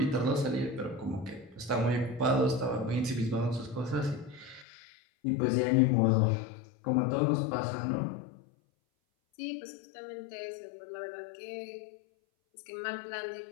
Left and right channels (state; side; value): drops out; right; at 4.7 s